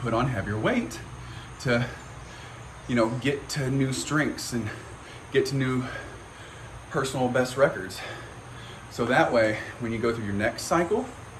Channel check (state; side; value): identical; both; correlation 1.00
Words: put on heavier weight to, you know, get to new strengths and get to new personal best records. So that way, when you go through your next cycle,